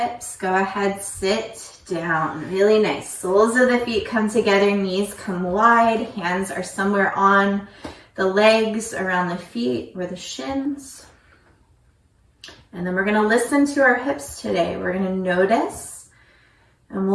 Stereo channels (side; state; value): both; identical; correlation 1.00